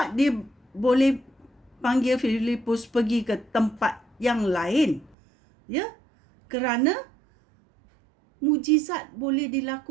dia boleh panggil Filipus pergi ke tempat yang lain. Ya, kerana mujizat boleh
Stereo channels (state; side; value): drops out; left; at 5.2 s